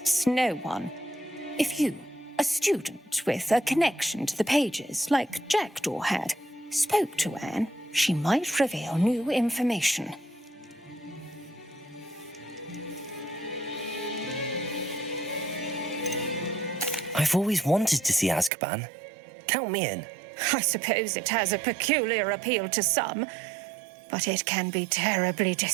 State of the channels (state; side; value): drops out; left; at 18.5 s